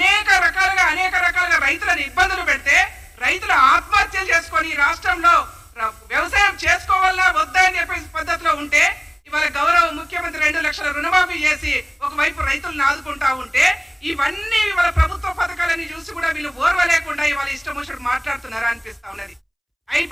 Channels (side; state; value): both; identical; correlation 1.00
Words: రకాలుగా రైతులను ఇబ్బందులు పెడితే రైతులు ఆత్మహత్యలు చేసుకొని రాష్ట్రంలో వ్యవసాయం చేసుకోవాలా వద్దా అని చెప్పే పద్ధతిలో ఉంటే ఇవాళ గౌరవ ముఖ్యమంత్రి 2 లక్షల రుణమాఫీ చేసి ఒకవైపు రైతులను ఆదుకుంటా ఉంటే ఇవన్నీ ఇవాళ ప్రభుత్వ పథకాలని చూసి కూడా వీళ్ళు ఓర్వలేకుండా ఇవాళ ఇష్టం వచ్చినట్టు మాట్లాడుతున్నారా అనిపిస్తా ఉన్నది.